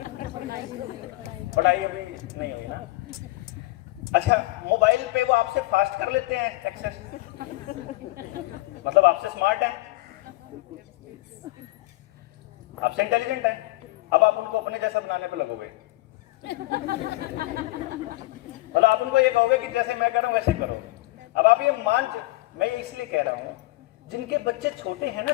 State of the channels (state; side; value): quieter; right; 20.2 dB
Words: पढ़ाई अभी नहीं हुई ना? अच्छा, मोबाइल पे वो आपसे फास्ट कर लेते हैं एक्सेस, मतलब आपसे स्मार्ट है, आपसे इंटेलिजेंट है, अब आप उनको अपने जैसा बनाने पे लगोगे, मतलब आप उनको ये कहोगे कि जैसे मैं कह रहा हूं वैसे करो। अब आप ये मैं ये इसलिए कह रहा हूं, जिनके बच्चे छोटे हैं ना,